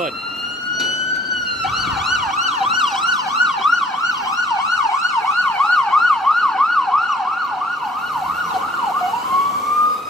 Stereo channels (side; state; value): both; normal; correlation 0.56